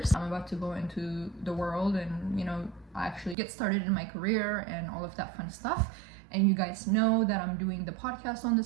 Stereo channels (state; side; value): drops out; left; at 3.4 s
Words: I'm about to go into the world and, you know, actually get started in my career and all of that fun stuff. And you guys know that I'm doing the podcast on the